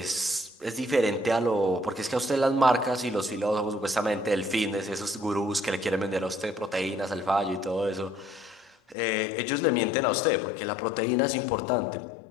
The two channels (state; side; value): drops out; right; at 9.0 s